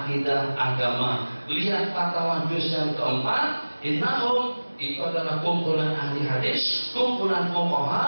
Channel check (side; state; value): both; inverted; correlation -1.00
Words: agama. Lihat fatwa juz yang keempat, innahum itu adalah kumpulan ahli hadis, kumpulan